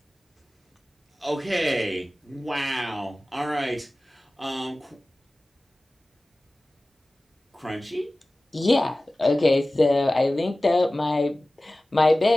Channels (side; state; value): both; normal; correlation 0.97